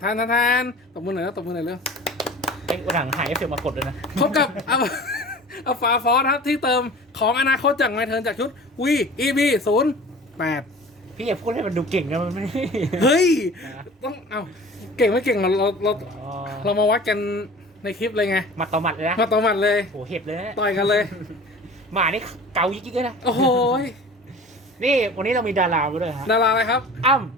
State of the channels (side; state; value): both; normal; correlation 0.41